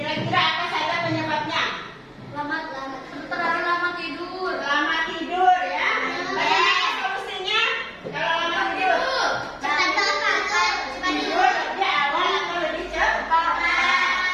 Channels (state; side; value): identical; both; correlation 1.00